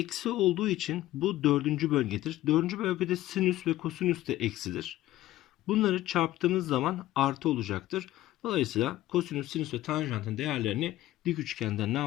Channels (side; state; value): right; quieter; 15.3 dB